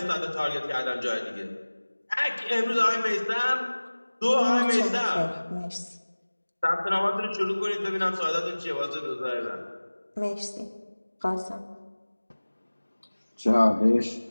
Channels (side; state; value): both; inverted; correlation -1.00